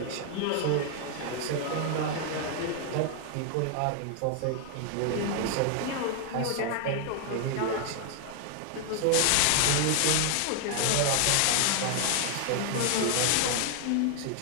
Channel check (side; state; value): both; different; correlation 0.00